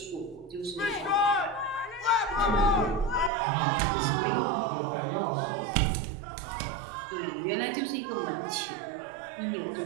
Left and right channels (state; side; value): drops out; left; at 3.3 s